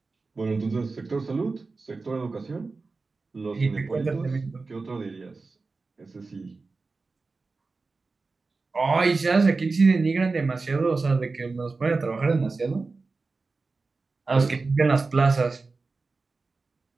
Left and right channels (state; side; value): quieter; left; 3.9 dB